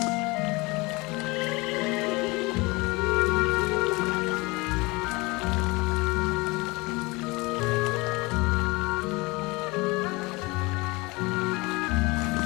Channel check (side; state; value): right; quieter; 24.5 dB